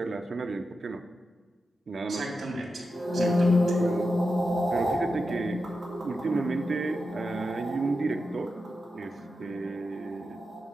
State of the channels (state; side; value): normal; both; correlation 0.89